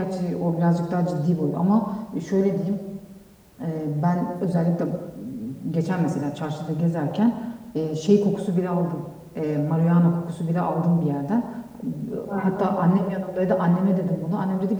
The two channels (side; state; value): both; identical; correlation 1.00